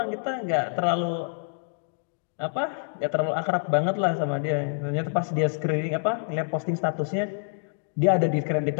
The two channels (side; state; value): right; silent; digital silence